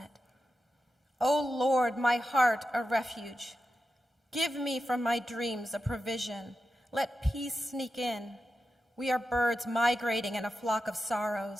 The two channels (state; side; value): normal; both; correlation 0.90